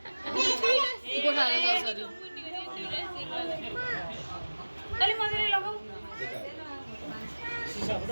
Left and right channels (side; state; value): both; inverted; correlation -1.00